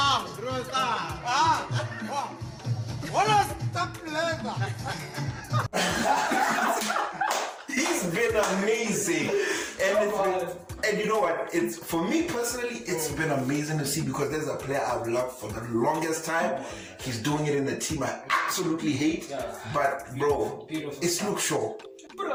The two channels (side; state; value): both; identical; correlation 1.00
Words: what a step leather! He's been amazing, and you know what? It's for me personally, it's been amazing to see because there's a player I've loved for the longest time. He's doing it in the team I absolutely hate, but bro, it's Luke Shaw.